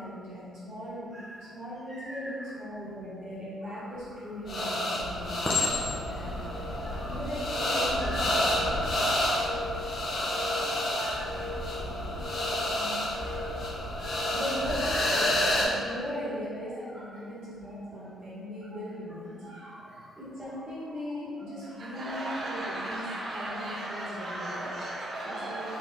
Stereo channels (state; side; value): normal; both; correlation 0.70